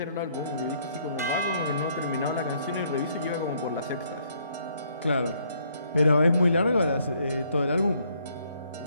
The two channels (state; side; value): inverted; both; correlation -0.68